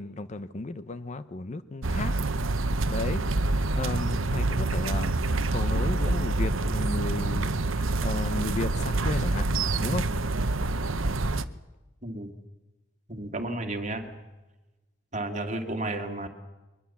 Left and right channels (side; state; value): both; normal; correlation 0.69